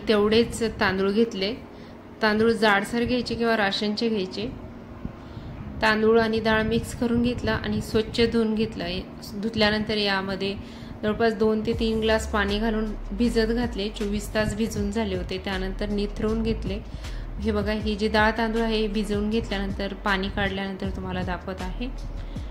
तेवढेच तांदूळ घेतले। तांदूळ जाडसर घ्यायचे किंवा राशनचे घ्यायचे। तांदूळ आणि डाळ मिक्स करून घेतला आणि स्वच्छ धुवून घेतलं। धुतल्यानंतर यामध्ये जवळपास 2 ते 3 ग्लास पाणी घालून भिजत घातले। 24 तास भिजून झाले होते। त्यानंतर निथळून घेतले। हे बघा, ही जी डाळ तांदूळ आहे भिजवून घेतल्यानंतर पाणी काढल्यानंतर तुम्हाला दाखवत आहे।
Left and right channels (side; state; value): both; identical; correlation 1.00